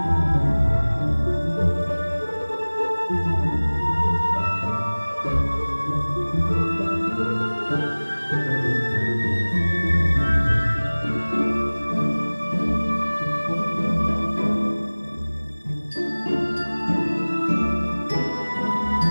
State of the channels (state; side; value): inverted; both; correlation -1.00